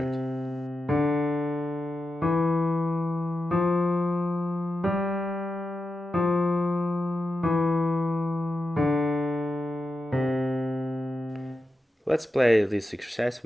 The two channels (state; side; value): normal; both; correlation 0.90